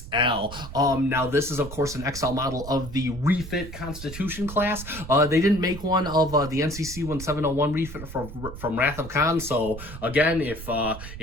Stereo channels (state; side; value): noise; right; rumble, 12 dB below the sound